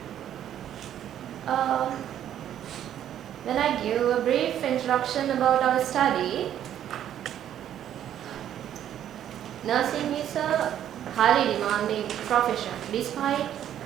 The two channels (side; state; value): left; quieter; 10.7 dB